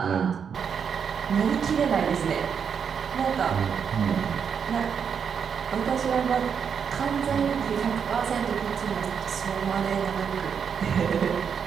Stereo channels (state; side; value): quieter; left; 7.0 dB